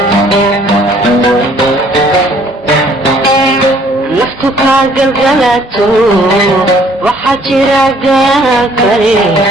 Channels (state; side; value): normal; both; correlation 0.59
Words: naftu ka galgalato waxaa jira gaan kale